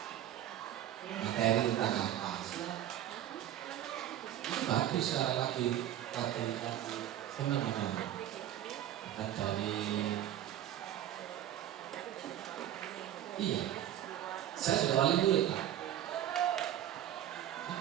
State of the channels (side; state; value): left; quieter; 11.9 dB